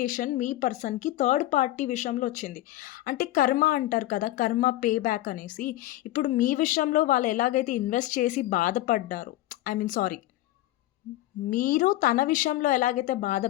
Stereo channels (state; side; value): quieter; right; 15.7 dB